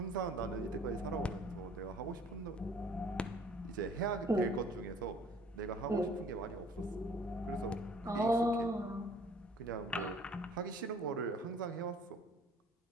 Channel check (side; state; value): both; normal; correlation 0.55